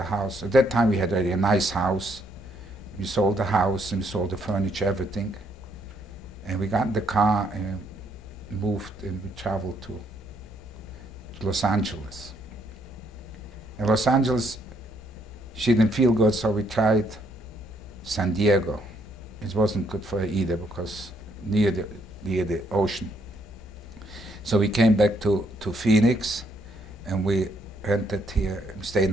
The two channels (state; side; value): normal; both; correlation 0.71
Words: house. At that time, we had already a nice house. We sold the house, and we sold the furniture, everything. And we got in the car and moved, and we traveled to Los Angeles. In Los Angeles, she didn't feel good, so we tried San Diego. It wasn't good for her either, because near the ocean. So we came back to Phoenix, and we rented here, stayed